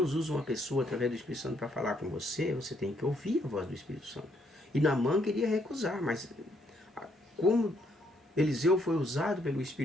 usa uma pessoa através do Espírito Santo para falar com você, você tem que ouvir a voz do Espírito Santo. E Naamã queria recusar, mas como Eliseu foi usado pelo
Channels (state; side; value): normal; both; correlation 0.71